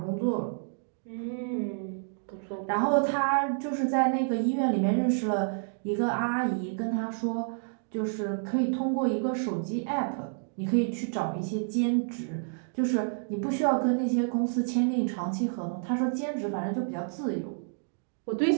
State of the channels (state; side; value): silent; left; digital silence